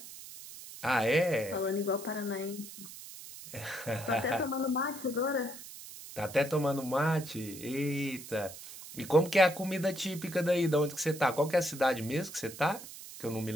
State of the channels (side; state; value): right; noise; hiss, 14 dB below the sound